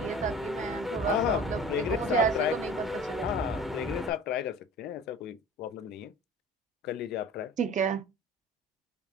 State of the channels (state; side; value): normal; both; correlation 0.41